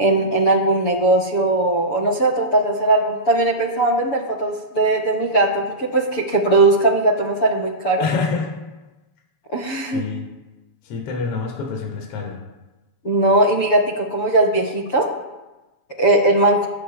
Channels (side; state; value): right; late; 6.9 ms